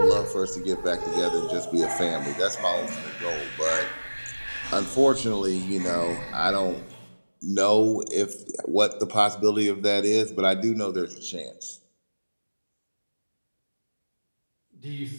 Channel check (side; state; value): both; inverted; correlation -1.00